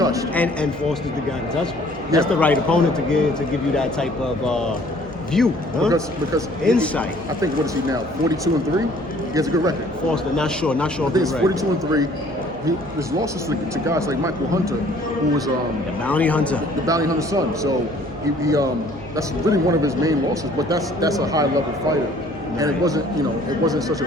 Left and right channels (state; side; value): noise; right; hum, 21 dB below the sound